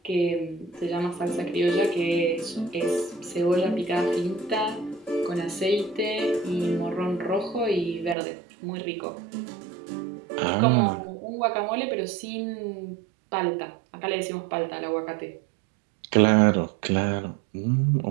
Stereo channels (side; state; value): left; drops out; at 8.2 s